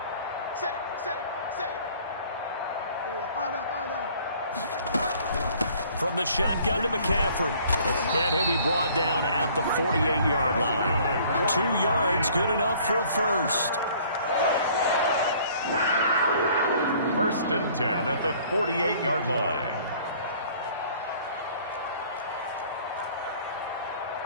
Safe. From the shotgun to McCaffrey. And he'll be brought down at the 48-yard line. 2 yards, good enough for a first. 1st and 10 at the 48-yard line.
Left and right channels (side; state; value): both; inverted; correlation -0.55